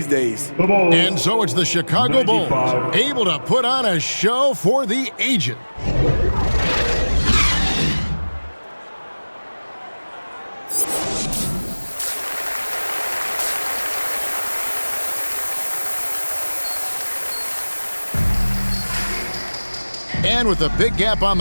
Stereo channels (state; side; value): inverted; both; correlation -1.00